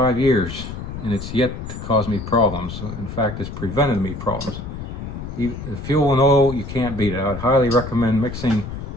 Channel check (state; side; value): noise; left; rumble, 8 dB below the sound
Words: years, and it's yet to cause me problems. In fact, it's prevented me problems. The fuel and oil, you can't beat it. I'd highly recommend mixing